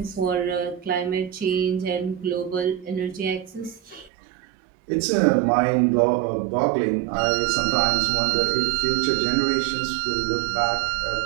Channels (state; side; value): drops out; left; at 4.1 s